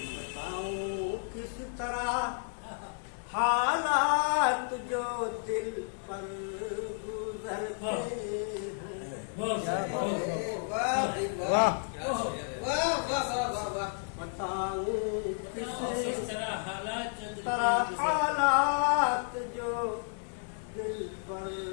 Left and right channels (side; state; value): right; silent; 56 dB below the other